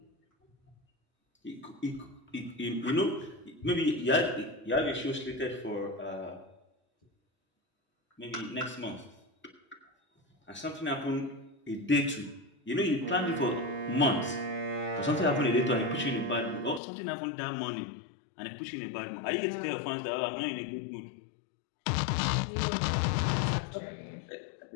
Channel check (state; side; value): drops out; right; at 16.8 s